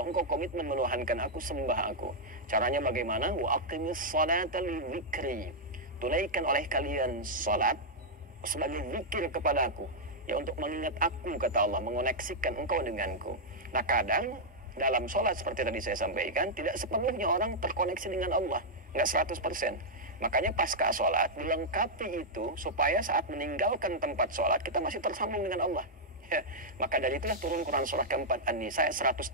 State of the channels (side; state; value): both; normal; correlation -0.05